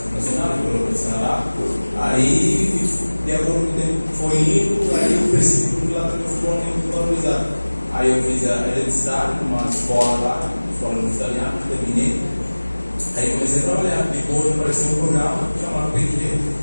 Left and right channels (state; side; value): inverted; both; correlation -1.00